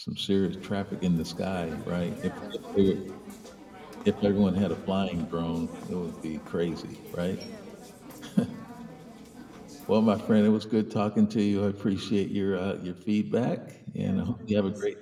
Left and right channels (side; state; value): both; identical; correlation 1.00